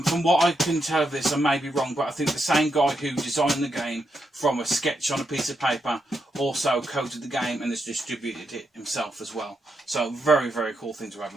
From what I can tell of this, I may be wrong, but I think the same guy who designed the game from a sketch on a piece of paper also coded the game and has distributed it himself as well. So very, very cool thing to have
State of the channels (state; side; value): normal; both; correlation 0.83